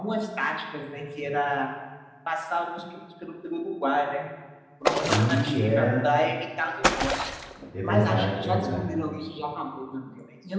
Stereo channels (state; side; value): identical; both; correlation 1.00